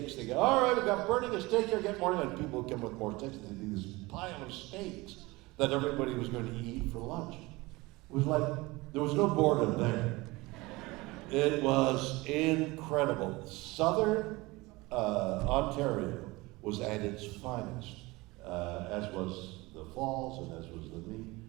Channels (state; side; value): quieter; left; 22.2 dB